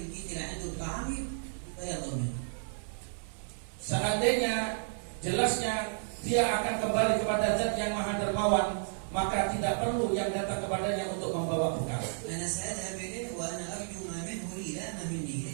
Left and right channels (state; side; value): silent; left; 56 dB below the other